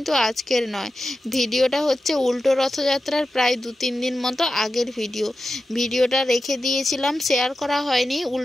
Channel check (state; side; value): normal; both; correlation 0.91